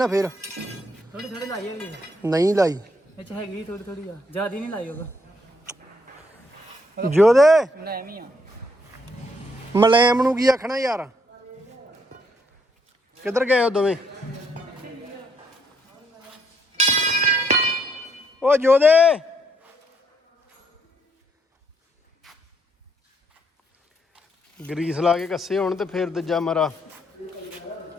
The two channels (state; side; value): normal; both; correlation 0.73